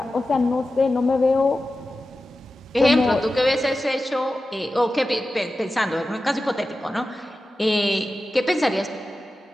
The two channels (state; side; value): normal; both; correlation 0.93